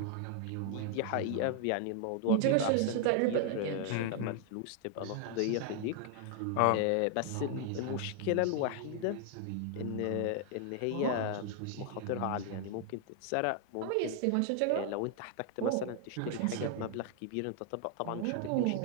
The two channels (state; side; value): different; both; correlation 0.00